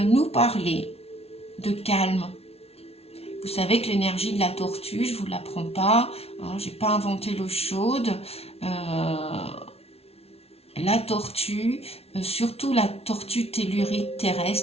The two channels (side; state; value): right; late; 0.30 ms